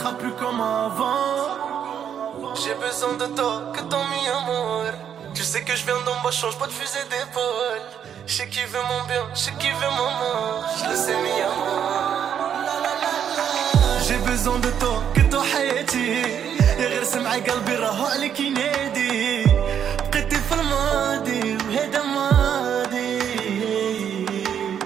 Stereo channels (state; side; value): quieter; left; 8.7 dB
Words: plus comme avant. J'ai besoin de toi, que ton mi-amour. Tu sais que je viens d'en bas, change pas de fusil d'épaule. Je sais qui veut mon bien, je sais qui veut mon mort. Je le sais mi-amour. J'ai besoin de toi, que toi حياتي. غير سمع قلبي راهو عليك ينادي. بقيتي في الماضي وهذا ماضي.